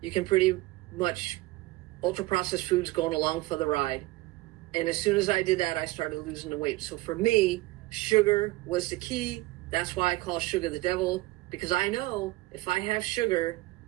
you can pretty much ultra-processed foods going along for the ride. And as soon as I did that, I started losing the weight. So for me, sugar was the key. That's why I call sugar the devil, because I know if I have sugar,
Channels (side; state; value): left; quieter; 19.6 dB